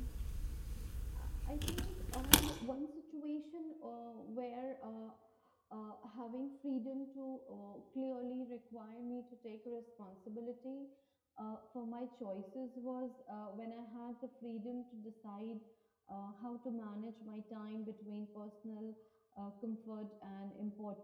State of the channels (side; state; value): both; identical; correlation 1.00